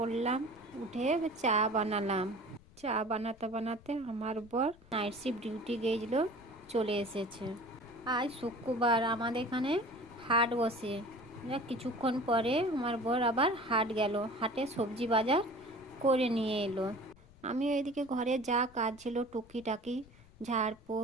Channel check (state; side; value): noise; left; rumble, 24 dB below the sound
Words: উঠে চা বানালাম। চা বানাতে বানাতে আমার বর নাইট শিফট ডিউটি গিয়েছিল, চলে এসেছে। আজ শুক্রবার, আমাদের এখানে হাট বসে। কিছুক্ষণ পরে আমার বর আবার হাট গেল, হাটে সবজি বাজার করে নিয়ে এলো। আমি এদিকে ঘরে যা কাজ ছিল টুকিটাকি